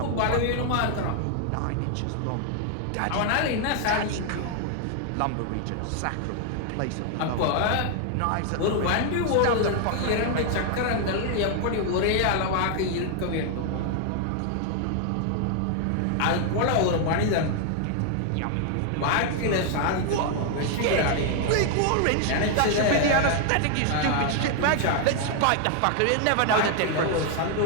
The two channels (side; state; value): both; different; correlation 0.00